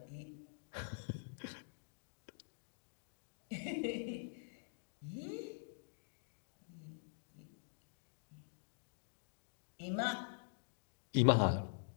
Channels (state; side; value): silent; right; digital silence